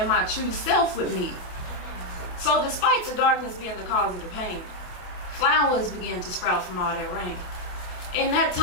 my true self would meet. So despite the darkness being the cause of the pain, flowers began to sprout from all that rain. In that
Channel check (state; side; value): late; right; 28 ms